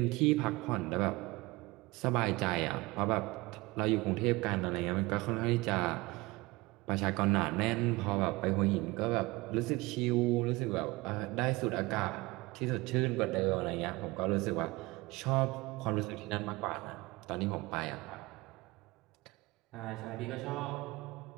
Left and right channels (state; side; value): quieter; left; 22.0 dB